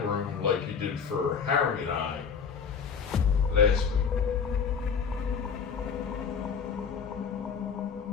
room like you did for Harry and I last week?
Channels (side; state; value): right; quieter; 6.3 dB